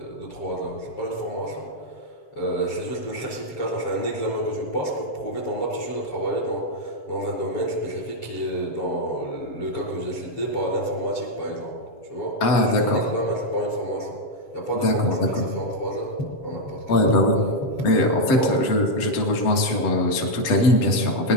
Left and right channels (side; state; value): right; late; 7.5 ms